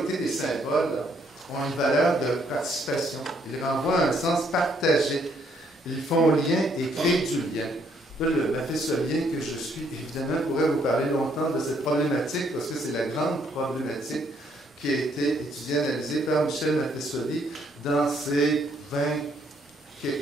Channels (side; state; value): both; normal; correlation 0.69